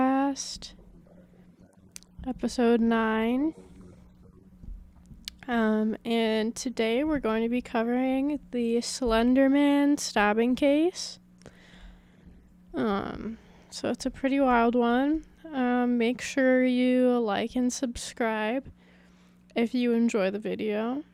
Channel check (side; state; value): both; identical; correlation 1.00